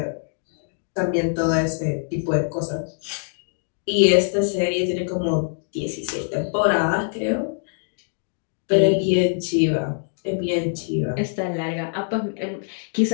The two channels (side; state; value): right; silent; digital silence